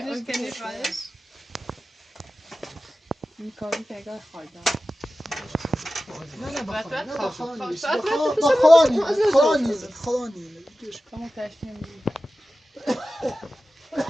که نیفایش این کاری که اگر خواهد نه باید خدا نیست کامو تشکیم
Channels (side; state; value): both; normal; correlation 0.95